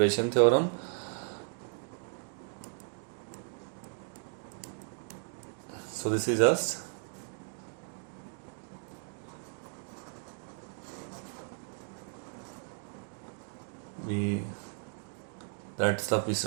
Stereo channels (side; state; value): left; silent; 54 dB below the other